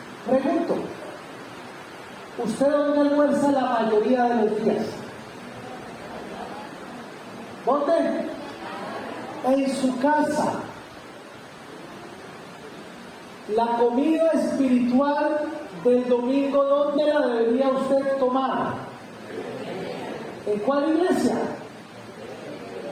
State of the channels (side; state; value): both; identical; correlation 1.00